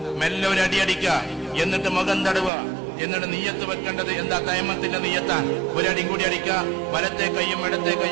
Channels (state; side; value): drops out; left; at 2.5 s